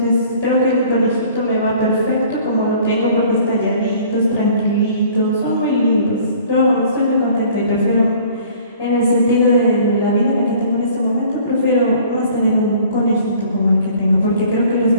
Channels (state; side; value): inverted; both; correlation -0.53